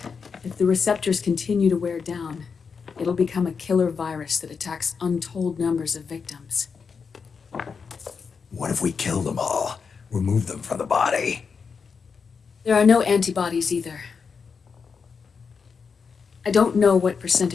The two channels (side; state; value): right; quieter; 5.7 dB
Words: if the receptors continue to wear down, it'll become a killer virus that attacks untold numbers of victims. What if we kill them all? Remove them from the body? There are no antibodies either. I don't know what